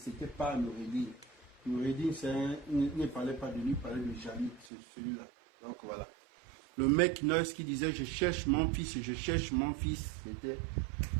Ce n'était pas Noureddine. Noureddine, il ne parlait pas de lui, il parlait de Jalil, c'est celui-là. Donc voilà. Le mec nurse qui disait je cherche mon fils et je cherche mon fils, c'était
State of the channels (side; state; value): left; drops out; at 4.7 s